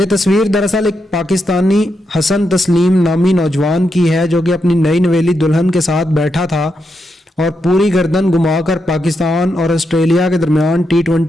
तस्वीर दरअसल एक पाकिस्तानी हसन तस्लीम नामी नौजवान की है जो कि अपनी नई नवेली दुल्हन के साथ बैठा था और पूरी गर्दन घुमाकर पाकिस्तान और ऑस्ट्रेलिया के दरमियान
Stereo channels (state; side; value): normal; both; correlation 0.83